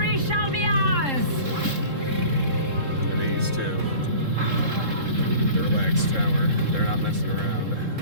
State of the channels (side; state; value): left; late; 3.7 ms